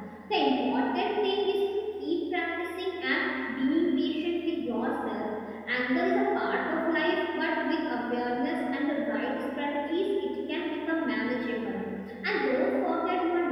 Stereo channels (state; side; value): identical; both; correlation 1.00